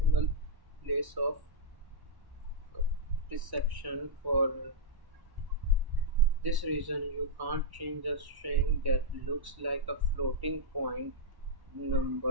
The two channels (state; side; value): late; left; 1.1 ms